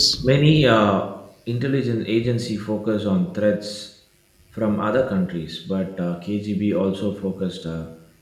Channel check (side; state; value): both; identical; correlation 1.00